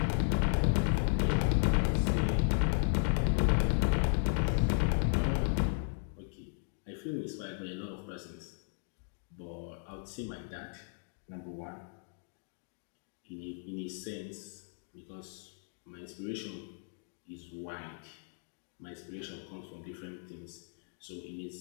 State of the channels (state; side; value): silent; right; 54 dB below the other